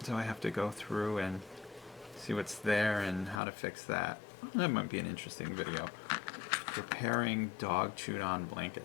I have to go through and see what's there and how to fix that. That might be an interesting video. Preparing dog chewed on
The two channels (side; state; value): right; drops out; at 3.4 s